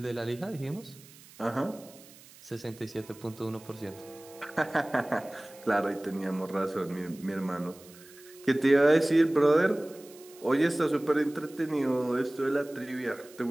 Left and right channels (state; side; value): noise; right; hiss, 22 dB below the sound